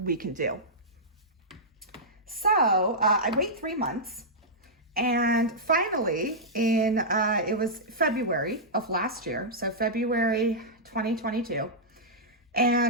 can do. So I wait 3 months, and finally it was February of last year, so February 2022,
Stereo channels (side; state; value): both; normal; correlation -0.11